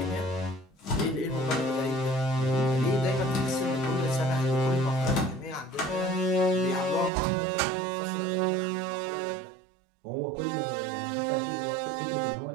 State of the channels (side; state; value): left; drops out; at 7.1 s